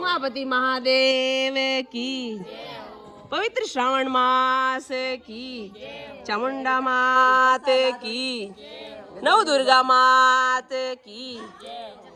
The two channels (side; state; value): both; identical; correlation 1.00